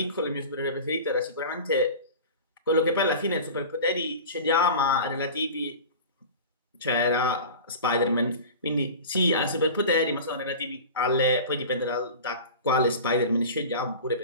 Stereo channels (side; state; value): both; inverted; correlation -0.35